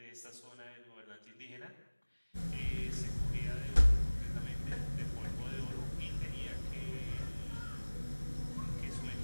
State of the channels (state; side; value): inverted; both; correlation -1.00